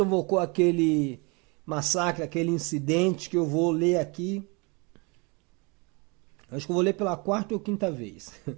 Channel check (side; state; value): left; quieter; 29.8 dB